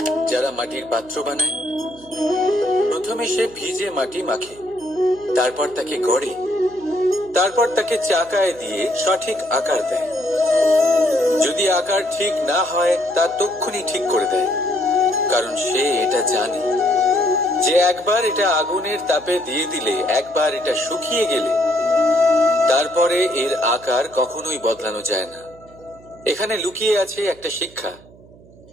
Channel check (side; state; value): right; noise; hum, 24 dB below the sound